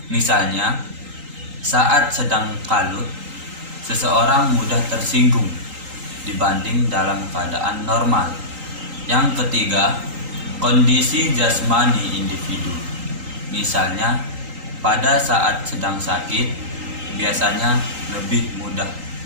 Misalnya, saat sedang kalut, seseorang mudah tersinggung dibanding dalam keadaan normal. Yang ketiga, kondisi jasmani individu. Misalnya, pada saat sedang sakit biasanya lebih mudah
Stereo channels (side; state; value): left; late; 3.8 ms